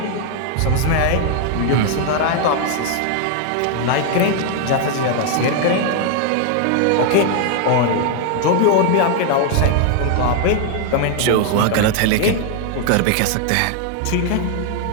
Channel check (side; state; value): both; different; correlation 0.00